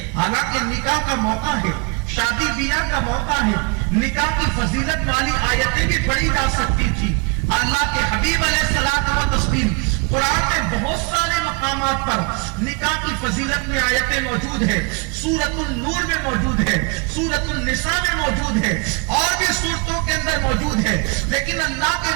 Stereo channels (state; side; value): quieter; left; 31.9 dB